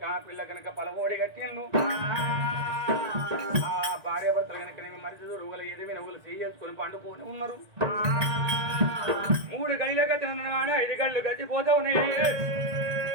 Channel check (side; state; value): left; late; 1.8 ms